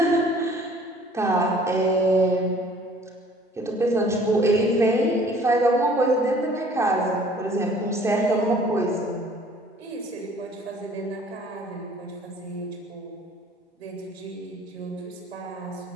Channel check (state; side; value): normal; both; correlation 0.54